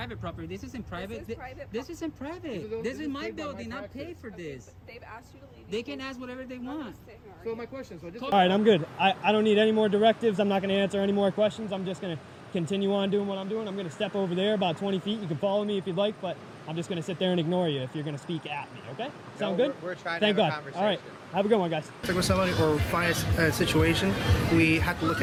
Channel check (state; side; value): identical; both; correlation 1.00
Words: property. This isn't private. This isn't private. This is my building. Not paid for this. They've asked you to leave. They can ask whatever they want. So my question is, all right, I'm good. I don't need any more directives. I'm not going to answer any more questions. I'm just going to continue on doing what I'm doing. I'm going to step over there about 20 feet. You can follow me if you'd like, but I'm just going to sit there and ignore you if you're going to speak at me, okay? Sound good? We're trying Thank to have God. a conversation. All right. Have a good one, guys. like with somebody or find a situation, we have to look